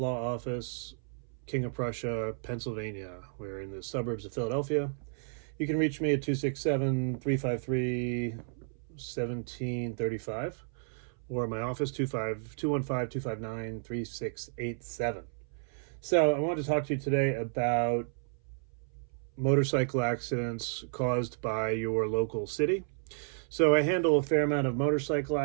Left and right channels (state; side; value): silent; left; 56 dB below the other